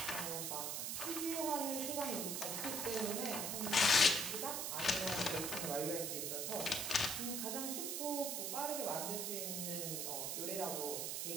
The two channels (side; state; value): right; noise; hiss, 1 dB below the sound